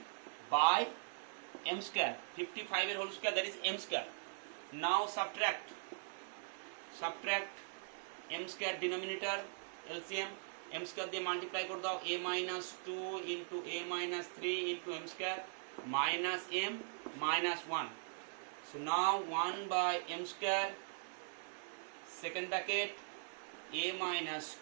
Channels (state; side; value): silent; left; 50 dB below the other